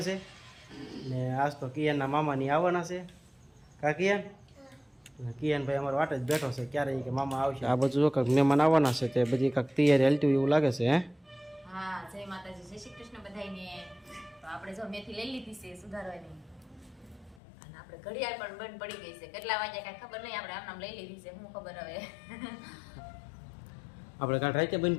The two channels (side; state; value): right; drops out; at 17.4 s